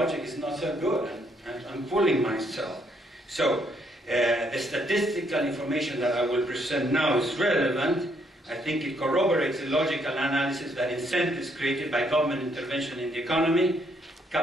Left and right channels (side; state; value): both; normal; correlation 0.71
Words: is not so good, and I'm fooling myself. So the statistical information that I will present now is relevant. I think it corroborates the logical analysis that incentives created by government intervention in the economy,